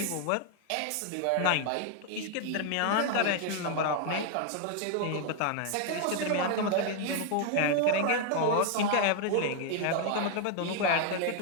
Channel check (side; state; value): both; different; correlation 0.00